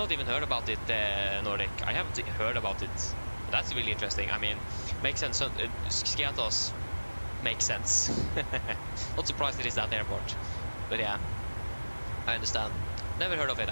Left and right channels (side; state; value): both; inverted; correlation -1.00